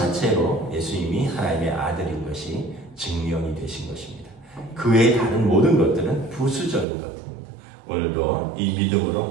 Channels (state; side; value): drops out; left; at 6.9 s